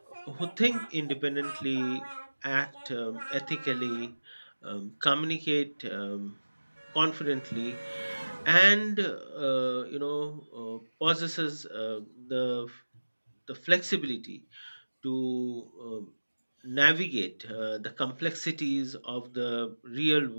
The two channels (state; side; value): inverted; both; correlation -1.00